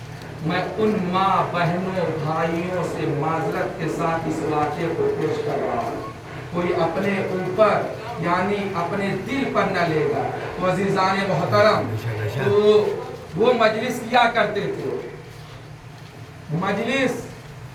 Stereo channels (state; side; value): identical; both; correlation 1.00